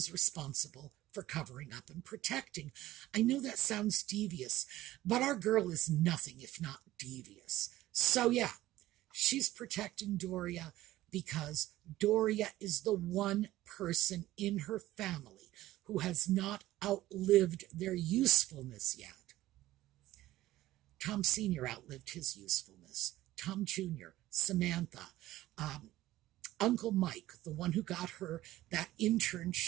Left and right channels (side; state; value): left; quieter; 15.7 dB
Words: responsible for covering up and protecting. I know that sounds devious, but our girl is nothing if not devious. So yeah, she's protecting Doria because Doria is the one person in her family who has not outlived their usefulness yet. Tom Sr. outlived his usefulness. Tom Jr., Samantha, Uncle Mike, the one who got her that